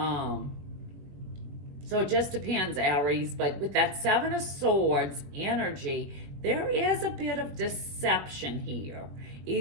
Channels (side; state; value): left; late; 21 ms